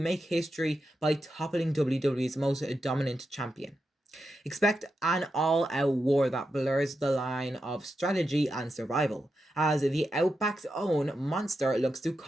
history by toppling WWE's most dominant champion. Expect an all-out war that blurs the line of strategy and survival, as the Outback's own Monster looks to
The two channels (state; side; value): normal; both; correlation 0.88